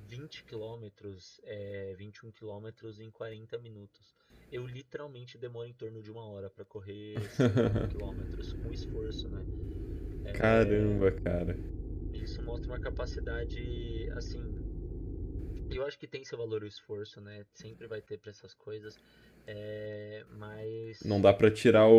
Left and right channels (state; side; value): identical; both; correlation 1.00